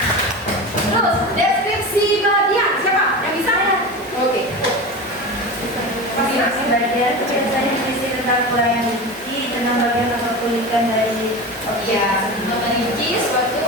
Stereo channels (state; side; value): normal; both; correlation 0.27